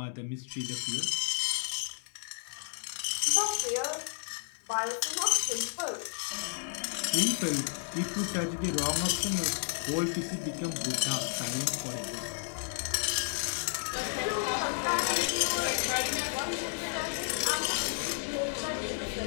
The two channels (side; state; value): right; silent; 56 dB below the other